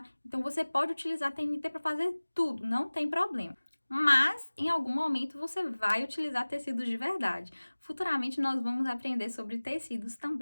Então, você pode utilizar TNT para fazer tudo, não tem problema. Mas, em algum momento, você vai utilizar tecidos de verdade. Futuramente, nós vamos aprender sobre tecidos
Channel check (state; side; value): inverted; both; correlation -1.00